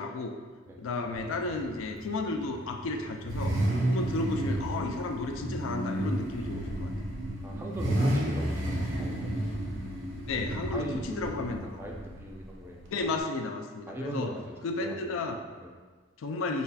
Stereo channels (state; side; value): normal; both; correlation 0.57